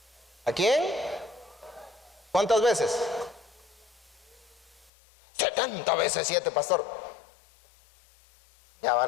¿A quién? ¿Cuántas veces? 70 veces 7, pastor. Ya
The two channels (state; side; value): drops out; right; at 4.9 s